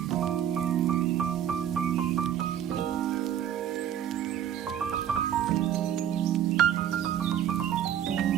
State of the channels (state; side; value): quieter; left; 10.1 dB